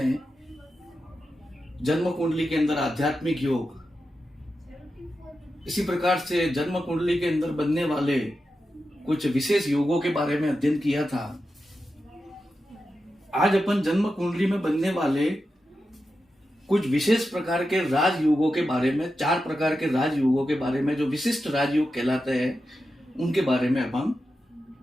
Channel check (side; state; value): both; normal; correlation 0.90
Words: जन्म कुंडली के अंदर आध्यात्मिक योग, इसी प्रकार से जन्म कुंडली के अंदर बनने वाले कुछ विशेष योगों के बारे में अध्ययन किया था। आज अपन जन्म कुंडली में बनने वाले कुछ विशेष प्रकार के राजयोगों के बारे में, 4 प्रकार के राजयोगों के बारे में, जो विशिष्ट राजयोग कहलाते हैं, उनके बारे में अपन